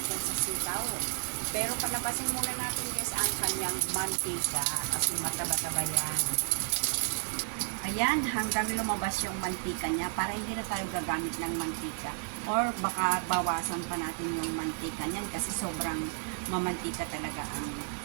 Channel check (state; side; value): silent; left; digital silence